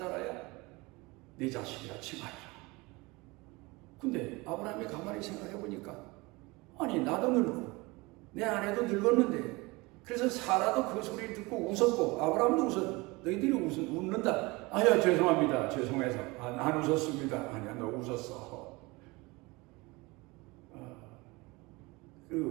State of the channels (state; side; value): quieter; left; 24.1 dB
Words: 내 자식이라 칭하리라. 근데 아브라함이 가만히 생각해 보니까 아니 나도 늙고 내 아내도 늙었는데 그래서 사라도 그 소리를 듣고 웃었고 아브라함도 웃었. 너희들이 웃는다. 아야 죄송합니다. 죄송해서 안 웃었습니다. 아니야 너 웃었어.